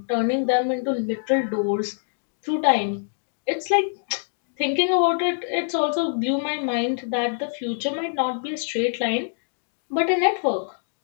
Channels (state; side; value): silent; right; digital silence